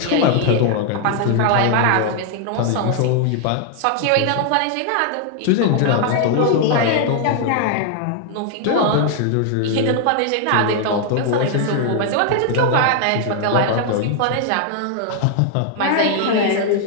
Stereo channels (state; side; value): different; both; correlation 0.00